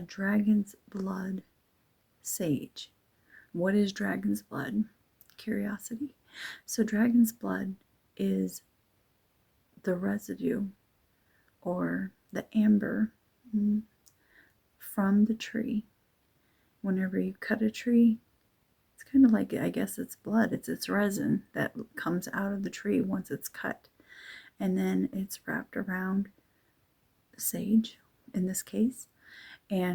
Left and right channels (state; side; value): identical; both; correlation 1.00